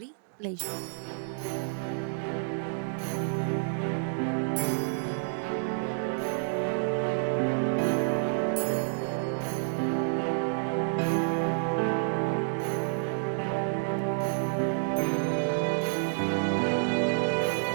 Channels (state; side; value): silent; left; digital silence